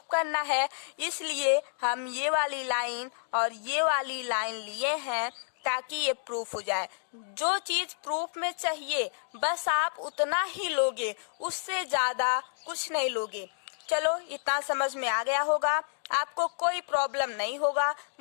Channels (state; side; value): silent; right; digital silence